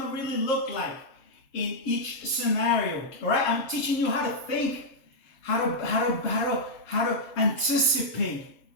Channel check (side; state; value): right; late; 7.4 ms